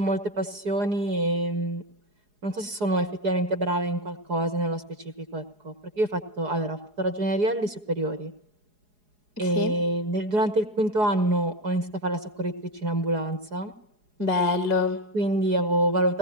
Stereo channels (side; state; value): left; late; 4.8 ms